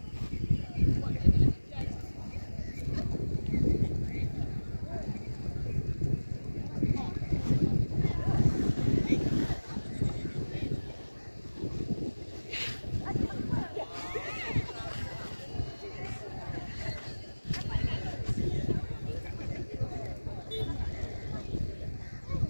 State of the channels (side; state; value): both; inverted; correlation -1.00